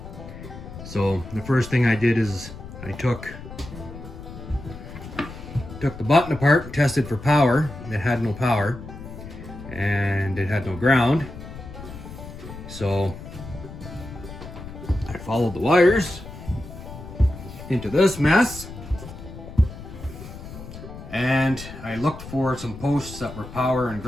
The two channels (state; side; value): noise; left; rumble, 13 dB below the sound